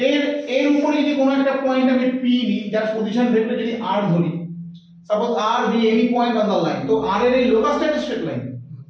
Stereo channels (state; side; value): identical; both; correlation 1.00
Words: এর উপরে যদি কোনো একটা পয়েন্ট আমি p নিই, যার পজিশন ভেক্টর যদি r ধরি, suppose r be any point on the line, তো r এর এই লোকাস স্ট্রেট লাইন,